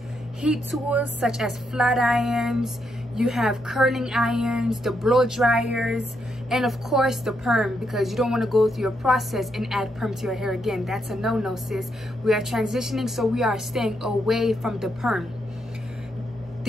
heat tools such as flat irons, you have curling irons, the blow dryers, and of course the perm, because you don't want to go through your process and add perm to your hair again. That's a no-no, sis. We are transitioning, so we are staying away from the perm.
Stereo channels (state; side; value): normal; both; correlation 0.79